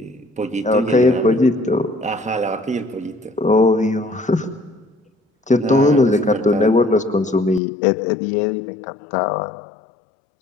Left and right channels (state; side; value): drops out; right; at 7.6 s